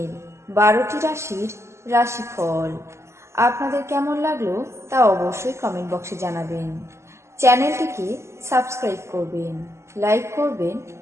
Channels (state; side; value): late; left; 0.13 ms